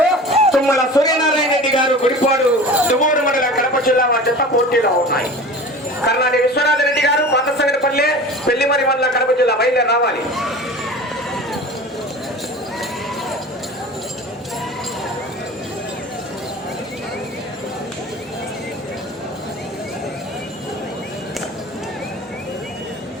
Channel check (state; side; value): normal; both; correlation 0.37